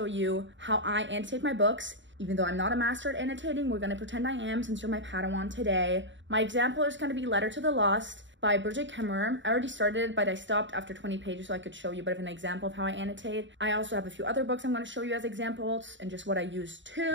you how I annotate my books. Even though I'm not a master at annotating, we're gonna pretend I am since you're my Padawan today. My example is gonna be Letter to the Lost by Bridget Kemmerer. I already started, but I stopped after 20 pages so I could show you a bit of an example of how I annotate. I also have a few other books I'm gonna show you as examples and just what I use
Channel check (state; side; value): late; left; 0.54 ms